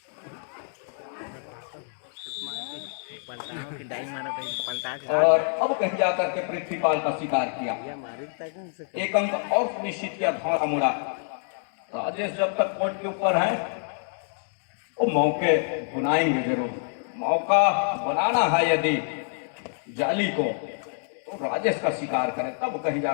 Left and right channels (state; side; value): silent; right; 58 dB below the other